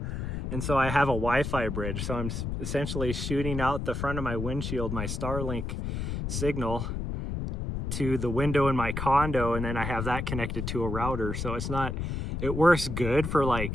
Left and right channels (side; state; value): left; noise; rumble, 3 dB below the sound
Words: And so I have a Wi-Fi bridge, so I'm essentially shooting out the front of my windshield, my Starlink signal, to the window in my condo, and then I have that connected to a router. So it works good for